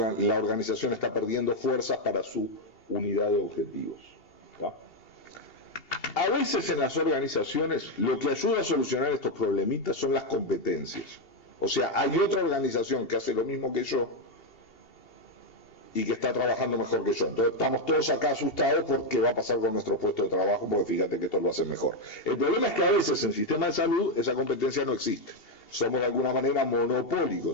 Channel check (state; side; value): late; right; 2.8 ms